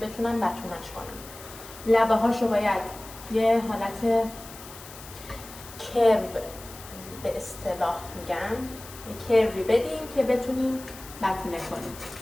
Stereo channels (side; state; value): left; noise; hiss, 16 dB below the sound